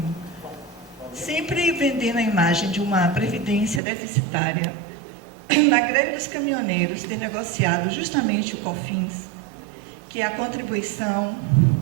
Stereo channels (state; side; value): drops out; left; at 3.8 s